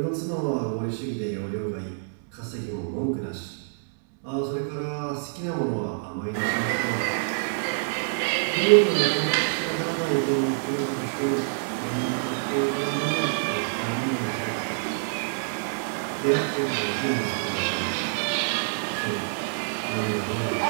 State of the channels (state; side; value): silent; left; 60 dB below the other